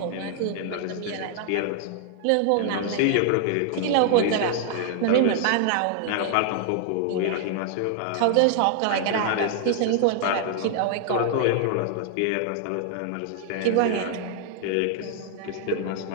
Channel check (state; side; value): different; both; correlation 0.00